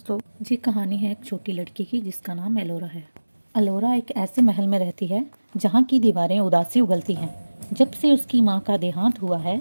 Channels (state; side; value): inverted; both; correlation -1.00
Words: ये कहानी है एक छोटी लड़की की जिसका नाम एलोरा है। एलोरा एक ऐसे महल में रहती है जहाँ की दीवारें उदासी उगलती हैं। जब से उसकी माँ का देहांत हुआ है,